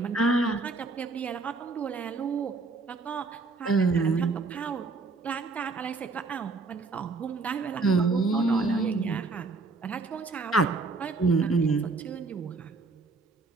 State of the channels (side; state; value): left; quieter; 3.8 dB